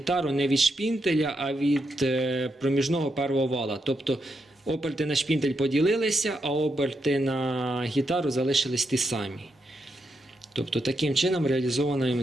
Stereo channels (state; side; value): normal; both; correlation 0.82